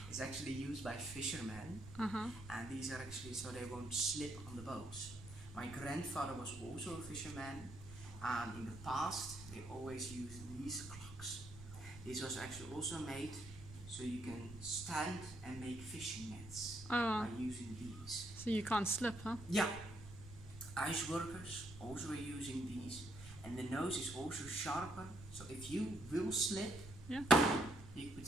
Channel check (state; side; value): noise; right; rumble, 14 dB below the sound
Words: It's actually used by fishermen, and these are actually so they won't slip on the boats. My grandfather was also a fisherman, and in the past they always used these clocks. This was actually also made so you can stand and make fishing nets by using these. So you can't slip, huh? Yeah, ice workers also are using these, and the nose is also sharper, so if you will slip, Yeah. you put